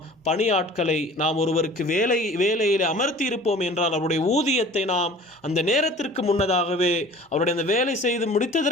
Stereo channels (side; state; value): both; normal; correlation 0.45